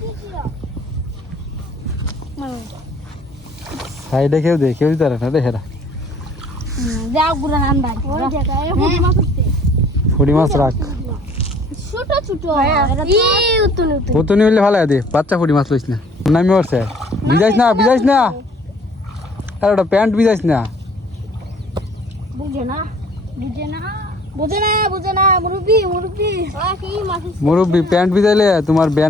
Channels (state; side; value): normal; both; correlation 0.55